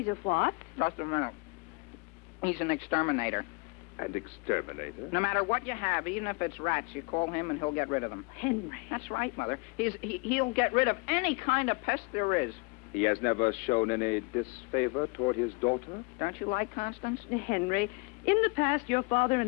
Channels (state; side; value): quieter; right; 29.6 dB